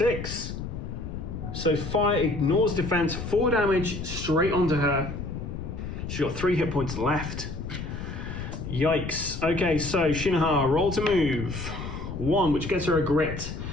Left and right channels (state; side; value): noise; left; rumble, 7 dB below the sound